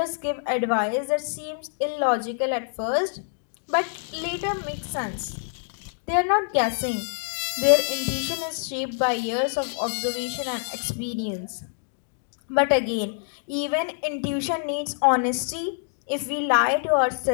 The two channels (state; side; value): silent; right; digital silence